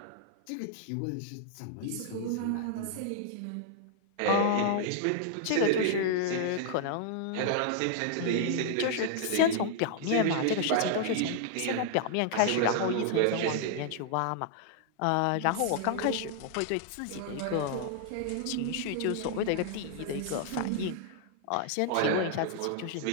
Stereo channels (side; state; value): both; different; correlation -0.01